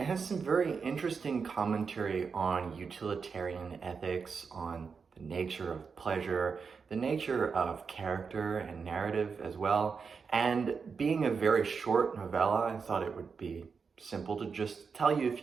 has some very interesting commentary on utilitarian ethics, on the nature of pleasure, the nature of character and narrative as well. And being a very short novella, I thought it would be simple to just tell you a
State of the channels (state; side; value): quieter; left; 5.5 dB